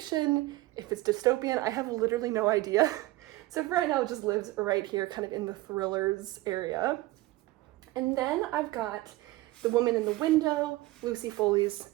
if it's dystopian, I have literally no idea. So for right now, it just lives right here, kind of in the thrillers area. And then I've got The Woman in the Window, Lucy Foley's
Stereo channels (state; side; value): quieter; left; 18.7 dB